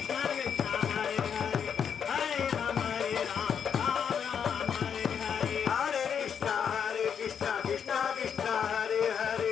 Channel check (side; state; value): right; quieter; 7.5 dB